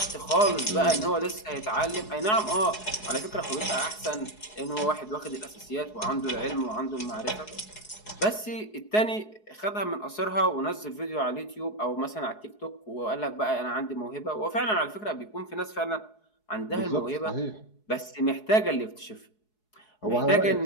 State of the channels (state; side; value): late; right; 4.7 ms